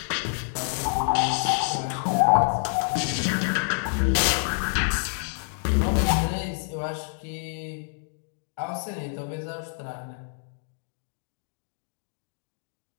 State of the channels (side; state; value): right; silent; digital silence